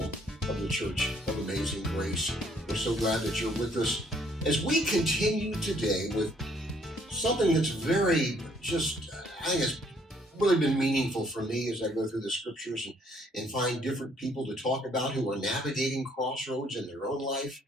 of the Church of Amazing Grace. We're so glad that you're with us as we continue today with something that's I think it's really been meaningful for me as I go through the scriptures and find different people to talk about who are navigating crossroads in their own life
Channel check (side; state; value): both; normal; correlation 0.65